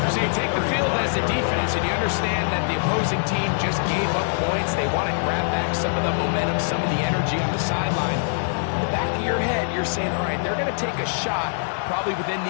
So you take the field as a defense, and you understand that the opposing team just gave up points. They want to grab back some of the momentum, some of the energy on the sideline. In the back of your head, you're saying, all right, they're going to take a shot probably within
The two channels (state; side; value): silent; right; digital silence